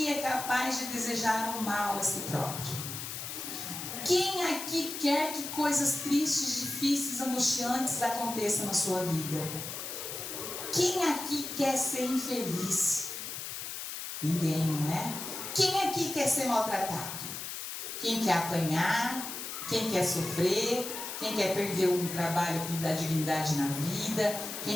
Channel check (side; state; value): left; noise; hiss, 7 dB below the sound